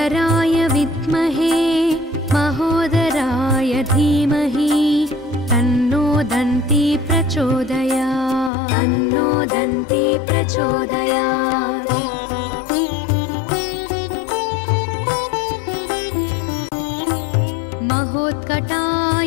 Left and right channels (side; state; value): right; drops out; at 8.5 s